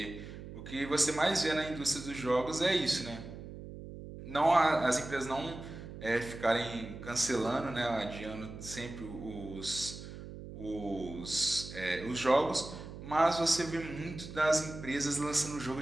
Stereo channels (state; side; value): noise; right; hum, 12 dB below the sound